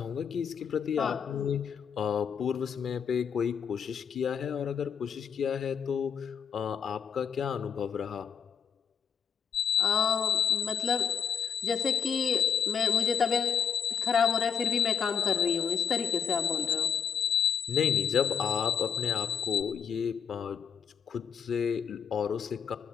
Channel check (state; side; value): quieter; right; 7.5 dB